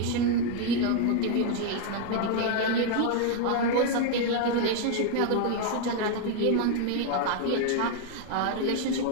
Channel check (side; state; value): both; different; correlation 0.00